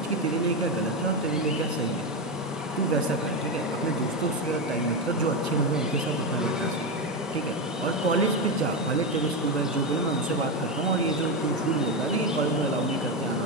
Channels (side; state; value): both; normal; correlation 0.12